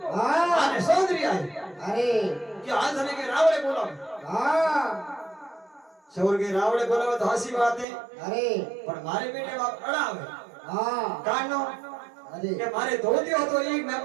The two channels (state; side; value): drops out; left; at 7.9 s